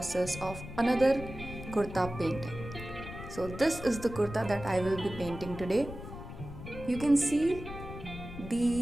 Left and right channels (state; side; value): noise; left; rumble, 11 dB below the sound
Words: of another kurta painting. So this is the kurta that I will be painting today. You can see